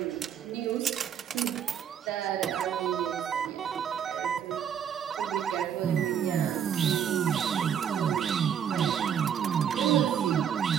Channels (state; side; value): quieter; left; 8.5 dB